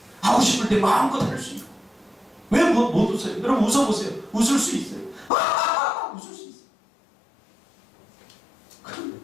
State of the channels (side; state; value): right; drops out; at 5.3 s